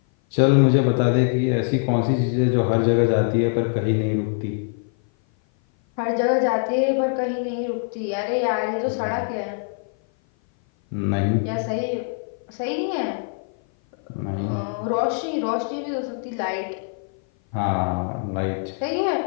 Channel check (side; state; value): right; silent; 56 dB below the other